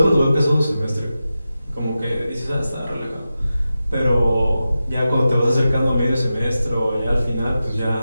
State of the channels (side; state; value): both; inverted; correlation -0.92